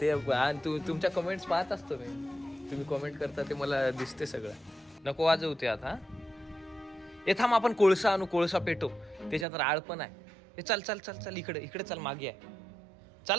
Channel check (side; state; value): left; drops out; at 9.5 s